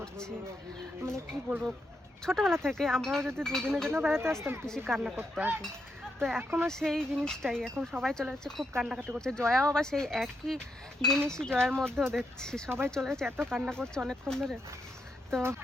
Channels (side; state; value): both; normal; correlation 0.81